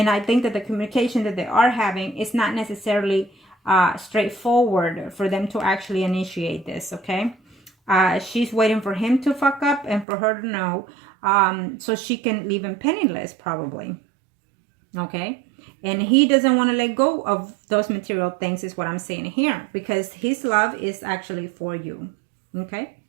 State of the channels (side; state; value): left; drops out; at 10.1 s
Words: I think that the communication that they are having is not necessarily straightforward for them to actually initiate this, okay? She's waiting for him to fuck up and for her to know, so she can leave him penniless, probably. Okay? And he doesn't want to let go of those material things, is what I'm saying here, because his love is actually for you. Okay?